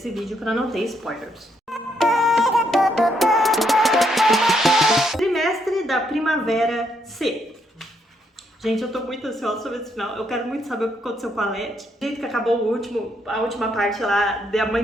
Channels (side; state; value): both; normal; correlation 0.74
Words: vídeo para não ter spoilers. Trimestre da Primavera C. Gente, eu tô muito ansiosa sobre esse final. Eu quero muito saber o que aconteceu com a Leti. O jeito que acabou a última parte lá, da